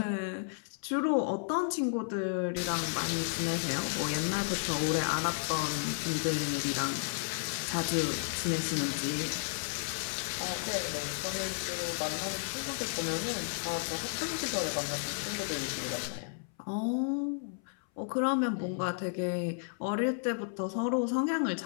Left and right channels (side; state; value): right; silent; 56 dB below the other